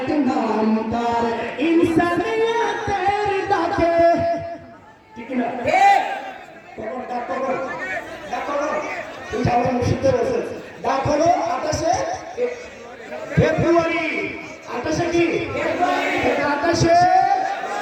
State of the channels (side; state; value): both; identical; correlation 1.00